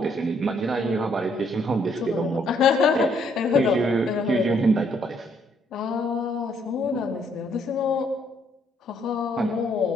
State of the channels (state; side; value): normal; both; correlation 0.69